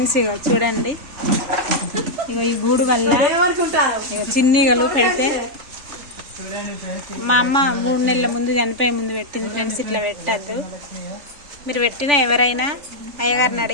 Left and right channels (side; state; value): left; late; 3.4 ms